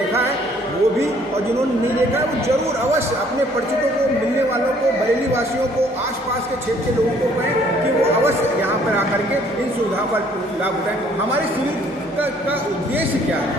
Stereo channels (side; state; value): both; normal; correlation 0.60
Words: है वो भी, और जिन्होंने नहीं देखा है वो जरूर अवश्य अपने परिचितों को, मिलने वालों को, बरेली वासियों को, आसपास के क्षेत्र के लोगों को कहें कि वो अवश्य यहाँ पर आकर के इन सुविधाओं का लाभ उठाएं। हमारे शिविर का उद्देश्य क्या है?